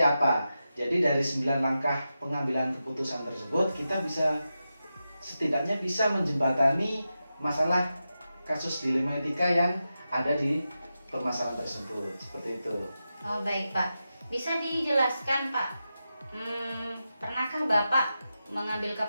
apa. Jadi dari 9 langkah pengambilan keputusan tersebut kita bisa setidaknya bisa menjembatani masalah kasus dilema etika yang ada di permasalahan tersebut. Seperti itu. Oh, baik Pak. Bisa dijelaskan Pak, pernahkah Bapak mengambil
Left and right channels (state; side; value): inverted; both; correlation -0.90